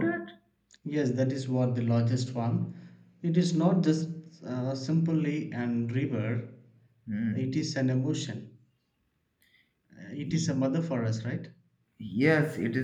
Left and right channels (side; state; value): both; identical; correlation 1.00